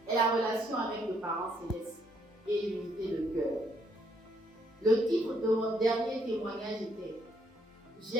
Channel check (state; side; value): normal; both; correlation 0.71